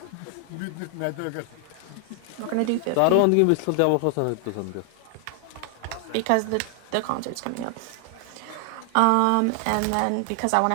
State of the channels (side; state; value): both; different; correlation 0.00